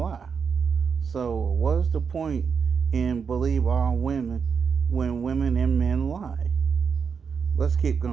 So what's the point in believe all women when women and men lie? Let's keep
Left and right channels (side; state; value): left; quieter; 6.1 dB